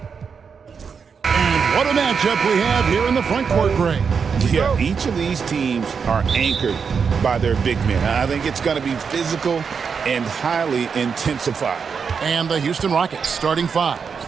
And what a matchup we have here in the front court, Greg. Yeah, each of these teams are anchored by their big men. I think it's going to be physical and highly intensified. And the Houston Rockets starting five.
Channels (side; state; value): left; quieter; 6.0 dB